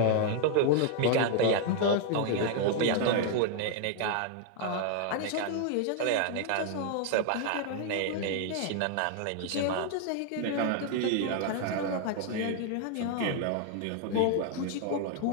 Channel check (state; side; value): different; both; correlation 0.00